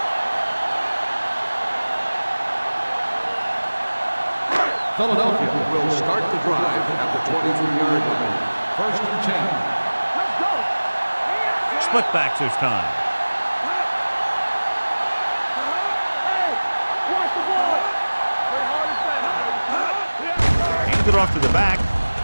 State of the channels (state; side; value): inverted; both; correlation -1.00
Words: Philadelphia will start the drive at the 23-yard line. First and 10. Let's go. Split backs this time. Hey, watch the ball. Play hard and fast. Hands it off to the back.